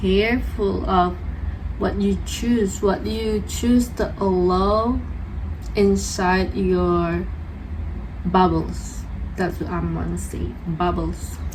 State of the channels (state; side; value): identical; both; correlation 1.00